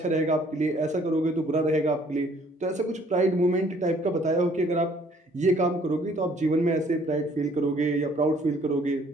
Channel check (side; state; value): both; normal; correlation 0.60